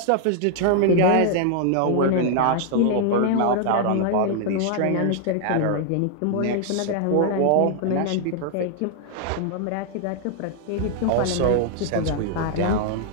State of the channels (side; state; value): both; different; correlation 0.00